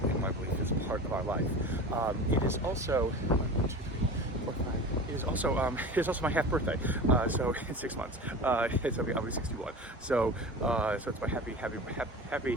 and why belief is a part of our life. It is also It is also my half birthday, so in 6 months. I'll be 61. So it's my happy half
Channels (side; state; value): both; normal; correlation 0.33